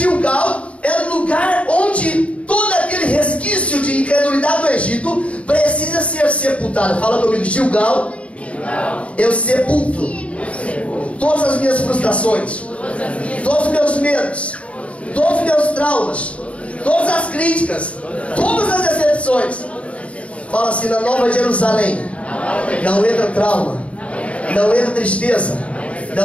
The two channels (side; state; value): right; late; 0.064 ms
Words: é o lugar onde todo aquele resquício de incredulidade do Egito precisa ser sepultado. Fala comigo: Gilgal, eu sepulto todas as minhas frustrações, todos os meus medos, todos os meus traumas, todas as críticas, todas as decepções. Fala assim: na Nova Jerusalém não entra trauma, não entra tristeza,